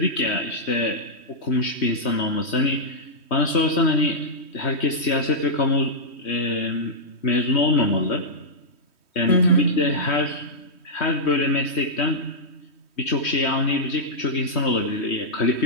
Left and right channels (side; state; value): right; late; 3.1 ms